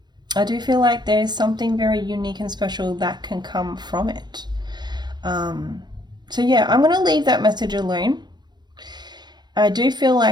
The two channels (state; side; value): late; left; 0.21 ms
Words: I do feel like there's something very unique and special that can come from it. So I'm going to leave that message alone. I do feel